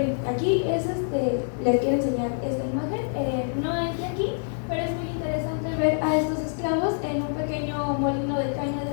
aquí les quiero enseñar esta imagen. No entré aquí, pero es muy interesante ver a estos esclavos en un pequeño molino de caña de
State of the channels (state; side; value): silent; right; 56 dB below the other